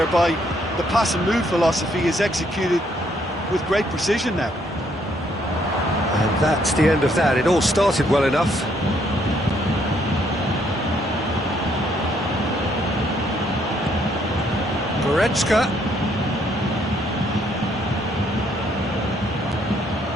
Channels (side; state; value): both; normal; correlation 0.69